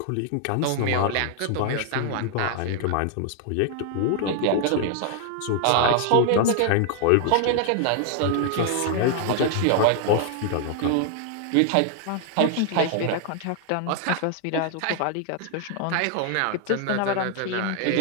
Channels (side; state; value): both; different; correlation 0.00